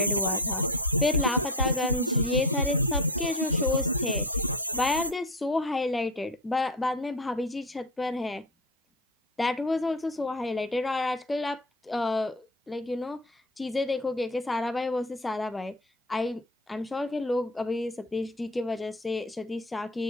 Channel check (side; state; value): both; normal; correlation 0.25